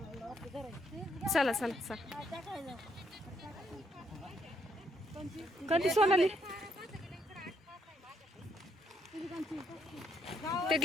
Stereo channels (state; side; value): normal; both; correlation 0.73